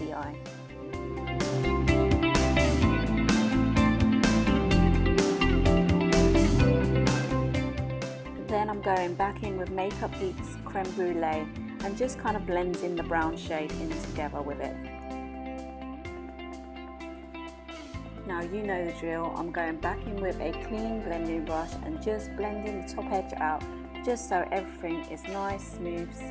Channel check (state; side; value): identical; both; correlation 1.00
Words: eye. Then I'm going back in with Makeup Geek's Creme Brulee and just kind of blending the brown shade in together with it. Now you know the drill, I'm going back in with a clean blending brush and just blending the top edge out, just so everything is nice, smooth,